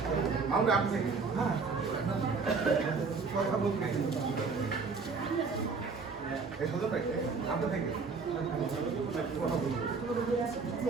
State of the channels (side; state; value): left; quieter; 4.7 dB